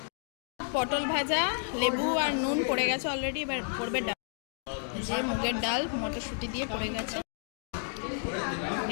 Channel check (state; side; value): silent; right; 57 dB below the other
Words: পটল ভাজা, লেবু আর নুন পড়ে গেছে অলরেডি, এবার পড়বে ডাল। যে মুগের ডাল মটরশুঁটি দিয়ে পড়ে গেছে।